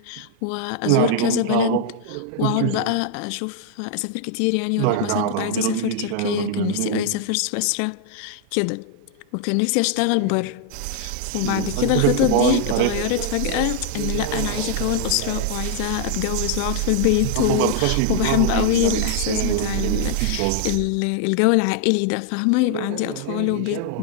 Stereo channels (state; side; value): different; both; correlation 0.00